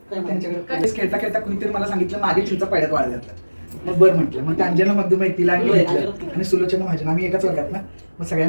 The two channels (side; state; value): both; inverted; correlation -1.00